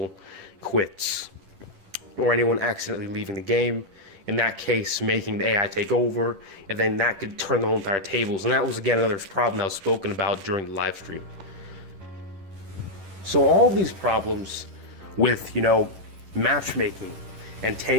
quits or anyone accidentally leaving the game. In that case, making the AI take over, and then that could turn the whole entire tables. And that was, again, another problem that was spoken about during the live stream. So all these problems with, matchmaking and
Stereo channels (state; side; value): late; left; 11 ms